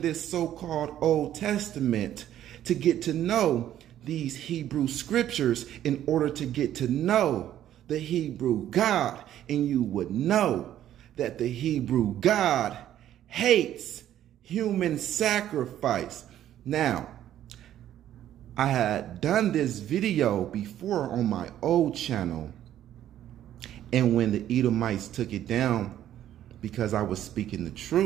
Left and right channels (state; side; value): quieter; left; 11.7 dB